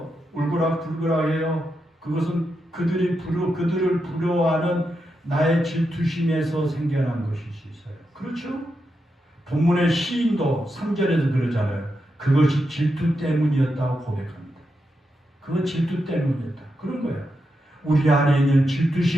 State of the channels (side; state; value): both; normal; correlation 0.86